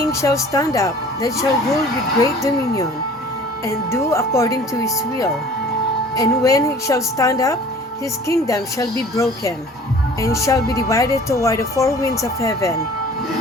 shall stand up, that shall rule with great dominion, and do according to his will. And when he shall stand up, his kingdom shall be broken, and shall be divided toward the four winds of heaven,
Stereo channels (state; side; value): normal; both; correlation 0.48